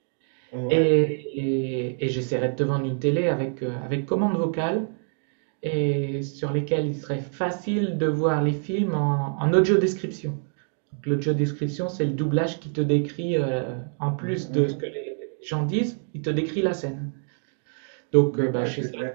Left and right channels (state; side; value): silent; left; 61 dB below the other